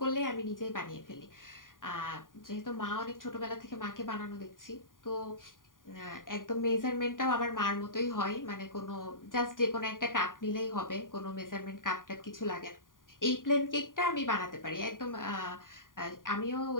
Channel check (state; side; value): late; right; 0.89 ms